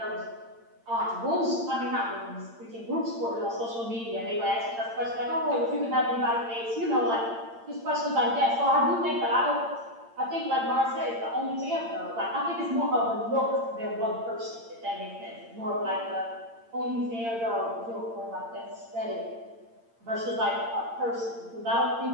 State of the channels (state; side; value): late; left; 8.8 ms